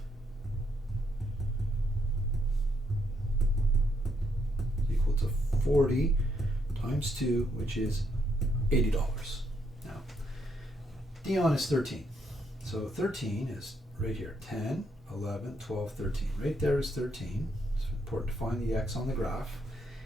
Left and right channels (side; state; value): both; normal; correlation 0.75